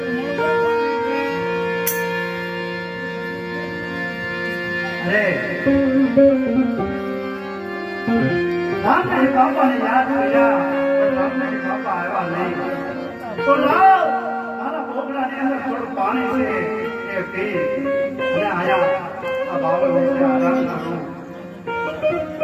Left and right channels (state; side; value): identical; both; correlation 1.00